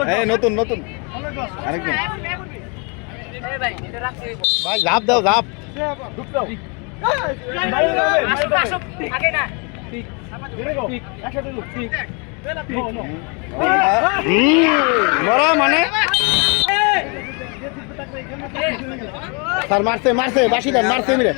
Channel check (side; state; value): right; quieter; 33.6 dB